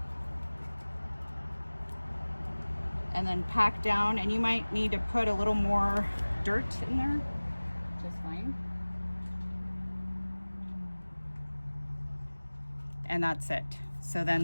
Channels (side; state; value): both; inverted; correlation -1.00